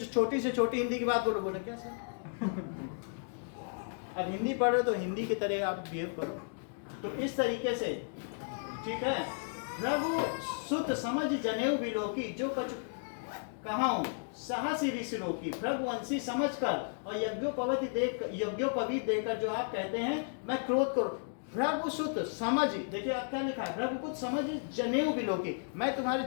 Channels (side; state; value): right; silent; digital silence